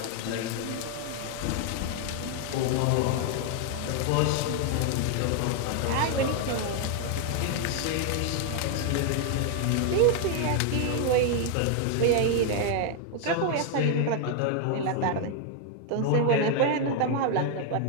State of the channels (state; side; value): different; both; correlation 0.00